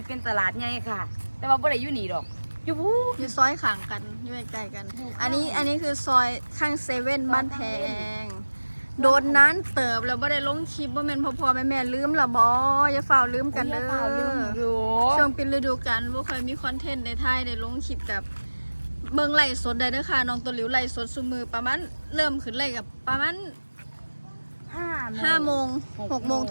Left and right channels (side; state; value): both; inverted; correlation -1.00